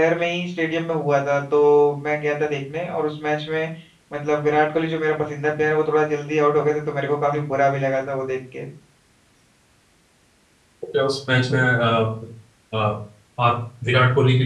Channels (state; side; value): identical; both; correlation 1.00